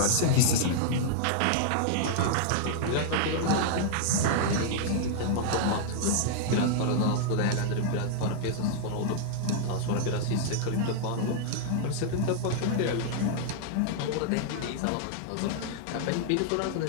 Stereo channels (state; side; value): different; both; correlation -0.01